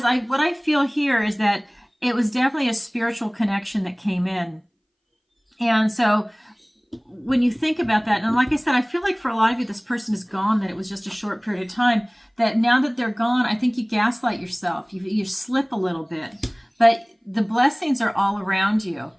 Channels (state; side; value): identical; both; correlation 1.00